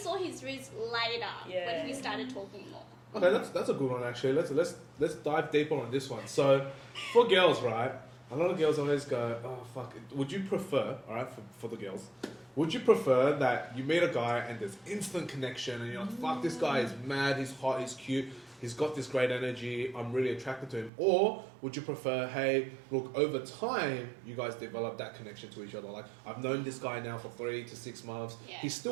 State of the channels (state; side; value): drops out; left; at 20.9 s